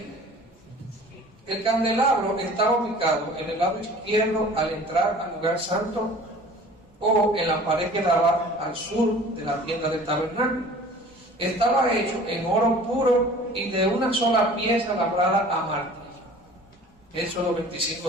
El candelabro estaba ubicado en el lado izquierdo al entrar al lugar santo, o en la pared que daba al sur de la tienda del tabernáculo. Estaba hecho en oro puro y de una sola pieza labrada a martillo. Éxodo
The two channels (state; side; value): normal; both; correlation 0.46